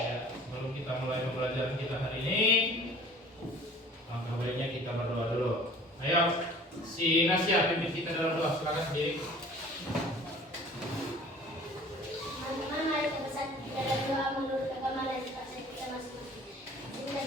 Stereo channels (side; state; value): both; normal; correlation 0.48